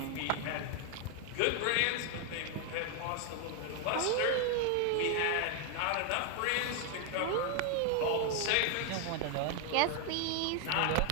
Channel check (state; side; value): different; both; correlation 0.00